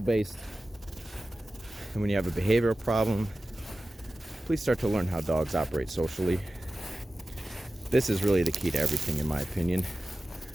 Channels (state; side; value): normal; both; correlation 0.95